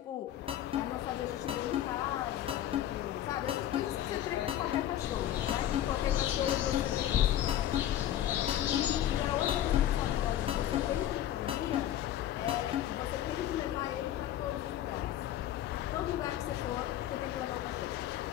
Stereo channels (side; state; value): right; quieter; 11.9 dB